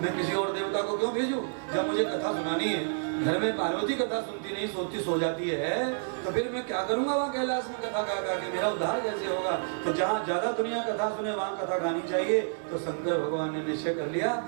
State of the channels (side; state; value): left; silent; digital silence